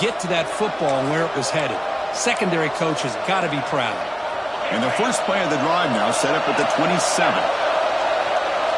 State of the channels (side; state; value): both; identical; correlation 1.00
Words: to that football and where it was headed. Secondary coach has got to be proud. And the first play of the drive now set up at the 27.